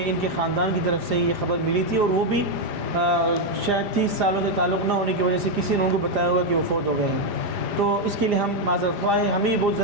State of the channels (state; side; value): late; left; 4.9 ms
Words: ان کے خاندان کی طرف سے یہ خبر ملی تھی اور وہ بھی شاید 30 سالوں سے تعلق نہ ہونے کی وجہ سے کسی نے ان کو بتایا ہوگا کہ وہ فوت ہو گئے ہیں، تو اس کے لیے ہم معذرت خواہ ہیں۔ ہمیں بہت